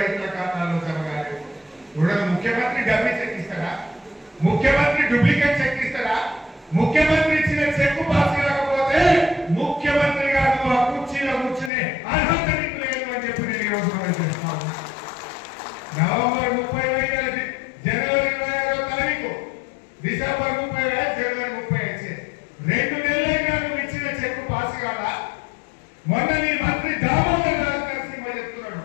రైతుల ఖాతాలో జమ కాలేదు. ముఖ్యమంత్రి డబ్బి చెక్ ఇస్తారా? ముఖ్యమంత్రి డూప్లికేట్ చెక్ ఇస్తారా? ముఖ్యమంత్రి ఇచ్చిన చెక్ పాస్ కాకపోతే ముఖ్యమంత్రి గారు ఆ కుర్చీలో కూర్చునే అర్హత నీకు లేదు అని చెప్పి నేను ఈరోజు మనం చేస్తాను. నవంబర్ 30 జనవరి 26వ తారీఖు, డిసెంబర్ 30 జనవరి 30 2 నెలలైనా నువ్వు ఇచ్చిన చెక్ పాస్ కాదా? మొన్న నీ మంత్రి దామోదర్ రాజు నరసింహ చెప్తున్నాడు,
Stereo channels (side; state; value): right; drops out; at 11.7 s